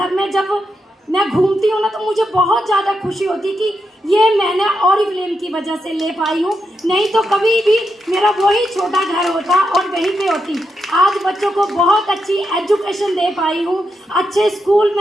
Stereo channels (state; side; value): normal; both; correlation 0.84